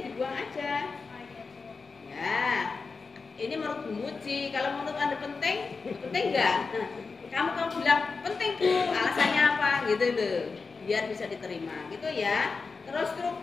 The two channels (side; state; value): right; quieter; 4.5 dB